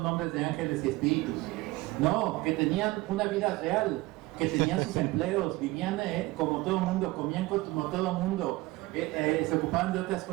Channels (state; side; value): quieter; left; 20.5 dB